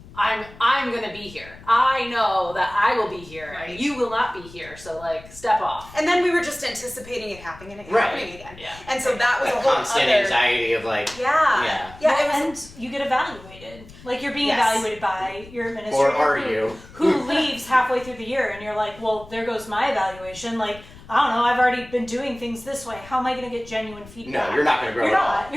I'm going to be here. I know that I will be here, and you will not be here, so like, step off. And then we were just anticipating it happening again. Yeah. And so that was That a whole constant other... anxiety of like... Yeah, And you get evaluated. Like, you're being evaluated by your administrator. Or are you? Who leaves halfway through the year, and you're like, well, there goes my evaluation. Like, I don't know, I've already been doing things this way. How am I going to get genuine feedback? No, you're not going to grow at all.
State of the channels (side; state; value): left; noise; rumble, 20 dB below the sound